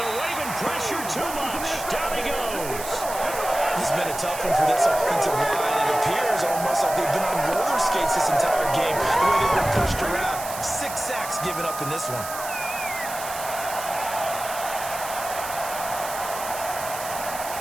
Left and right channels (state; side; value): noise; right; hiss, 9 dB below the sound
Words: they're waving pressure too much. Down he goes. This has been a tough one for this offensive line. It appears almost like they've been on roller skates this entire game, the way they've been pushed around. 6 sacks given up in this one.